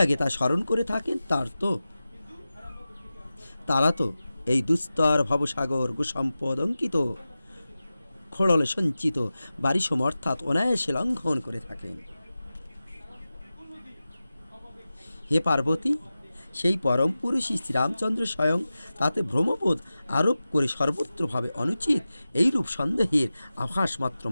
তা স্মরণ করে থাকেন তারা তো এই দুস্তর ভবসাগর গোসম্পদ অঙ্কিত খোড়লে সঞ্চিত বারিশম অর্থাৎ অনায়াসে লঙ্ঘন করে থাকেন। হে পার্বতী, সেই পরম পুরুষই শ্রীরামচন্দ্র স্বয়ং তাতে ভ্রমবোধ আরোপ করে সর্বত্রভাবে অনুচিত এইরূপ সন্দেহের আভাস মাত্র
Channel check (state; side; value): inverted; both; correlation -0.95